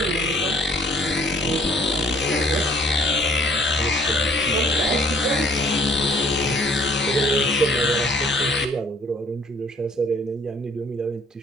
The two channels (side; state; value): both; normal; correlation 0.59